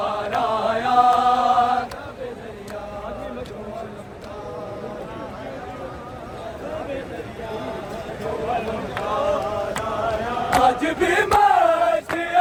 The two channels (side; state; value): both; identical; correlation 1.00